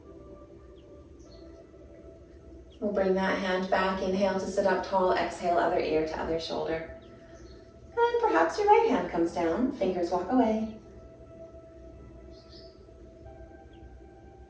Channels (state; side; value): identical; both; correlation 1.00